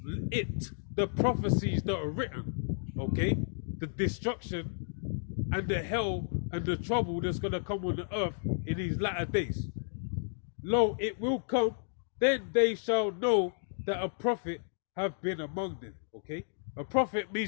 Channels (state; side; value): silent; right; digital silence